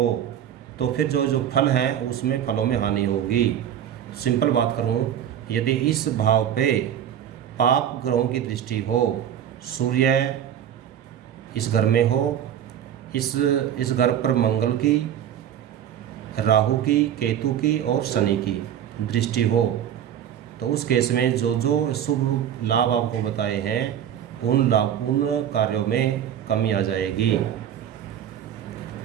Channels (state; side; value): quieter; left; 9.9 dB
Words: तो फिर जो फल हैं उसमें फलों में हानि होगी। सिंपल बात करूं, यदि इस भाव पे पाप ग्रहों की दृष्टि हो, सूर्य इस घर में हो, इस घर पर मंगल की, राहु की, केतु की और शनि की दृष्टि हो, तो उस केस में जो शुभ लाभ आपको बताए हैं उन कार्यों में कमी आ जाएगी।